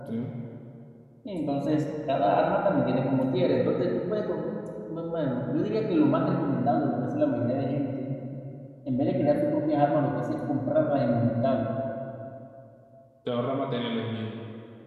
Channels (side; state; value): both; identical; correlation 1.00